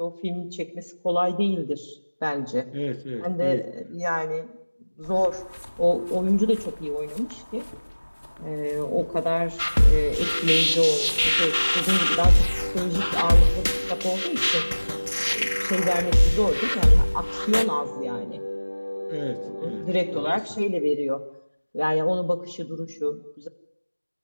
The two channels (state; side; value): inverted; both; correlation -1.00